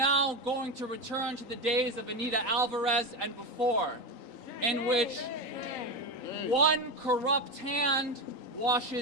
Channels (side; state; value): right; late; 3.9 ms